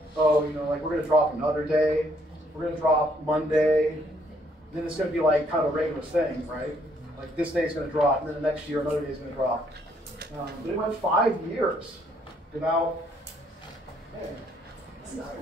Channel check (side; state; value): both; normal; correlation 0.68